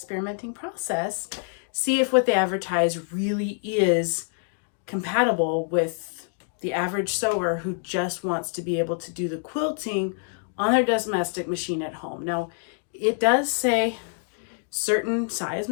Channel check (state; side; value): silent; right; 57 dB below the other